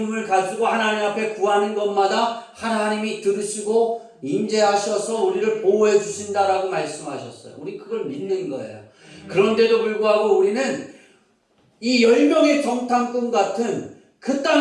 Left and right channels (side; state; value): both; identical; correlation 1.00